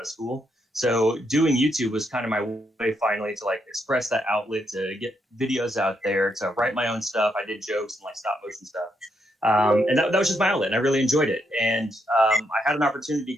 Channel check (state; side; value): normal; both; correlation 0.78